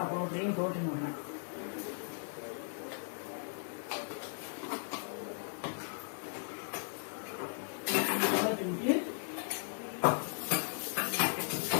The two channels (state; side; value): silent; right; 53 dB below the other